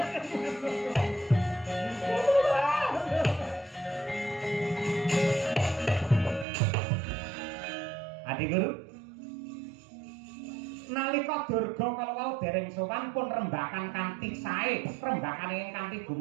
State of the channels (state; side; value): drops out; left; at 6.5 s